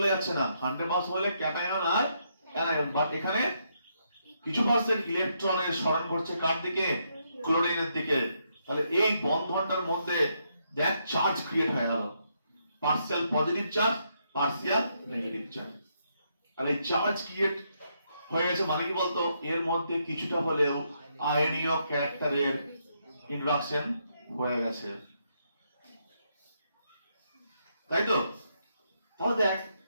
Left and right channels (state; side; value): inverted; both; correlation -0.77